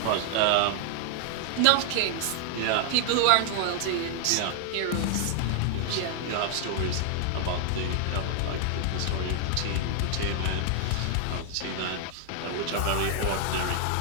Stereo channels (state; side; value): different; both; correlation 0.00